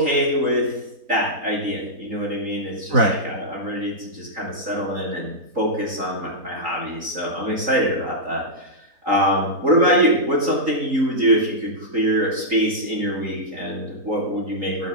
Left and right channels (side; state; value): left; late; 3.8 ms